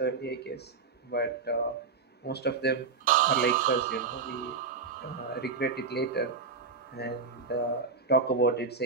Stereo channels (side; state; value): left; quieter; 4.8 dB